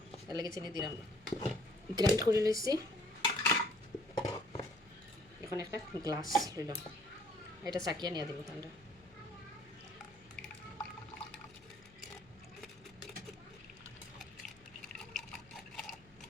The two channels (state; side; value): noise; left; hum, 25 dB below the sound